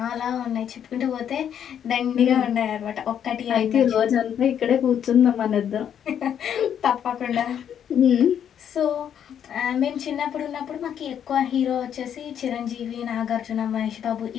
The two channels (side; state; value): right; quieter; 9.0 dB